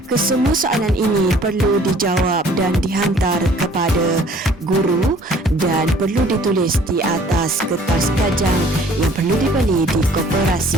Kesemua soalan ini perlu dijawab dan dihantar kepada guru dan perlu ditulis di atas kertas kajang yang perlu dibeli di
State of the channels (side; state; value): both; normal; correlation 0.55